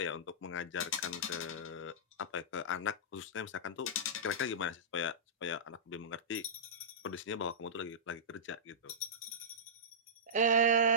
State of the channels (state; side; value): normal; both; correlation -0.18